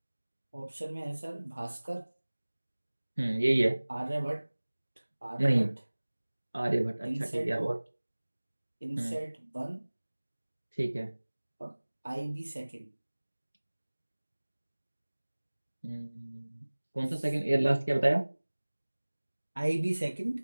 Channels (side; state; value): both; inverted; correlation -1.00